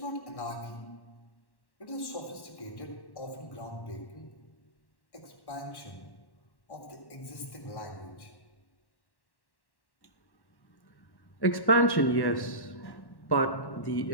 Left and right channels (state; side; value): late; right; 1.1 ms